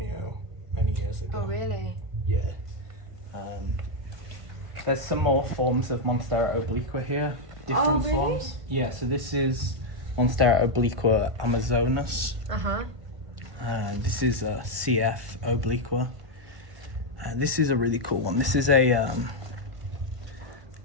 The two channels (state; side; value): late; left; 1.5 ms